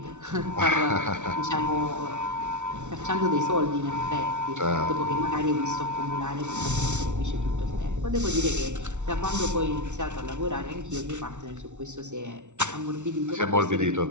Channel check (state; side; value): late; left; 0.84 ms